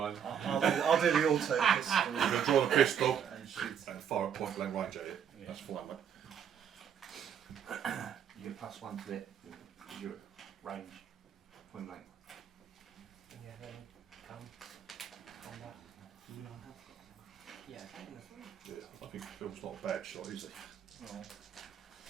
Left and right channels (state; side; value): quieter; left; 8.3 dB